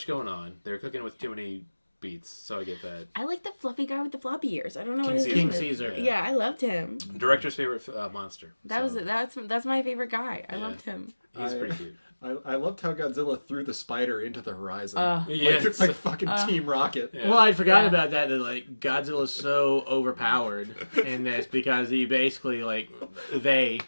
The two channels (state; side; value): inverted; both; correlation -1.00